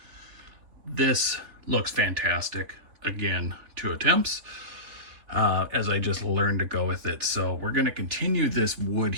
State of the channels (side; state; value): left; late; 3.7 ms